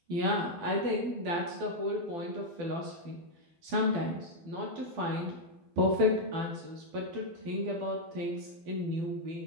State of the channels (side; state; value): left; late; 12 ms